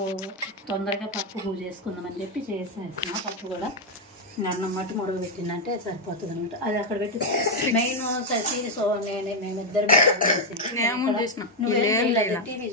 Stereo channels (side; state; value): both; normal; correlation 0.02